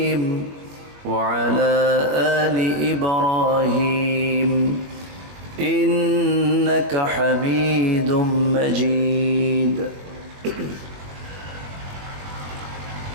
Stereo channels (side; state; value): left; late; 21 ms